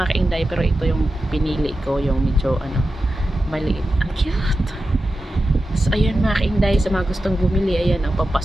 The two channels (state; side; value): normal; both; correlation 0.92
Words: kainday, pero ito yung pinili ko, yung medyo maliit. Ang cute. So, ayan mga kainday, sa mga gustong bumili, ayan ang